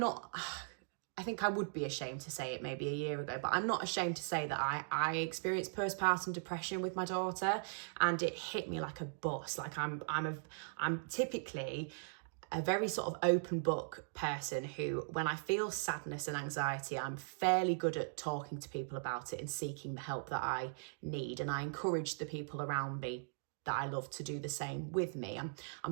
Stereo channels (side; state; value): left; silent; digital silence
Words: I think I would be ashamed to say it maybe a year ago, but I'm not ashamed to say that I experienced postpartum depression with my daughter, and it hit me like a bus. Like I'm typically a very sort of open book person who, when I feel sadness and anxiety, I'm fairly good at talking to people about it and seeking the help that I need. And I encourage the people around me that I love to do the same with me.